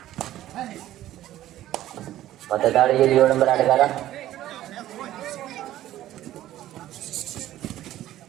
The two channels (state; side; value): quieter; left; 13.7 dB